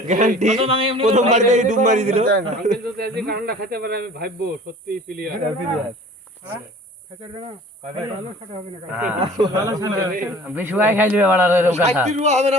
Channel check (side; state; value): both; normal; correlation 0.46